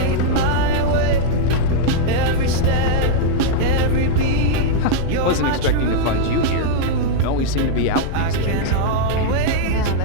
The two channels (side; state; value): both; different; correlation -0.01